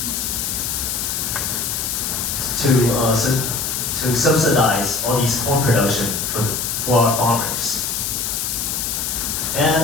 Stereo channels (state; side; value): noise; left; hiss, 1 dB below the sound